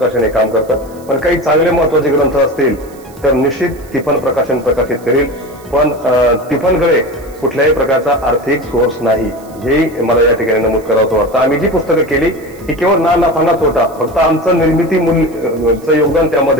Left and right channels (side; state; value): right; noise; hiss, 26 dB below the sound